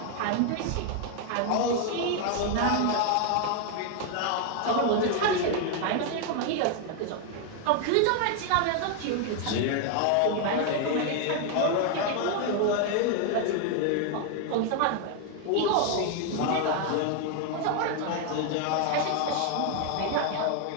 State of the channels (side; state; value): both; different; correlation 0.01